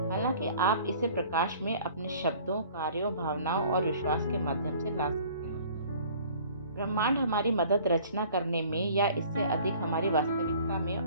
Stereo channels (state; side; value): inverted; both; correlation -0.51